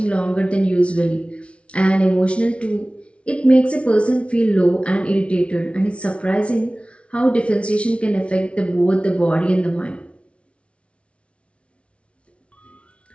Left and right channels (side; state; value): right; late; 0.061 ms